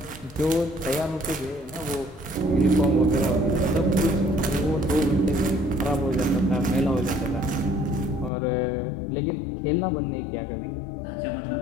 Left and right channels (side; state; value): right; drops out; at 8.3 s